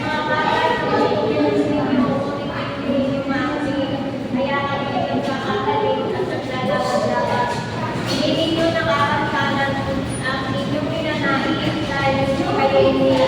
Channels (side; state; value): both; identical; correlation 1.00